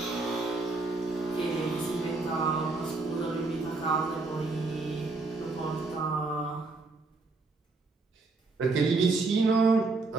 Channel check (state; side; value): quieter; left; 3.6 dB